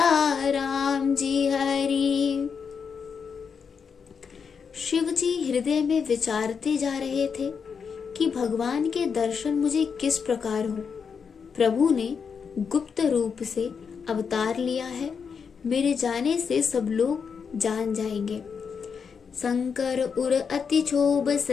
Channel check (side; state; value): right; quieter; 6.2 dB